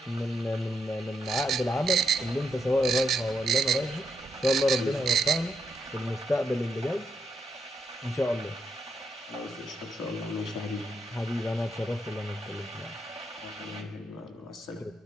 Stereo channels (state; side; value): normal; both; correlation 0.81